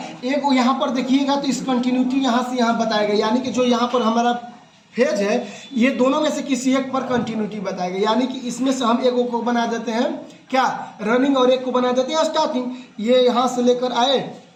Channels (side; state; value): both; identical; correlation 1.00